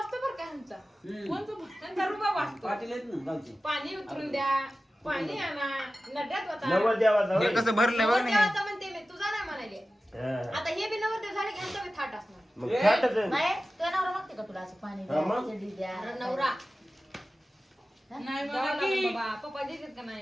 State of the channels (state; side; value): normal; both; correlation 0.95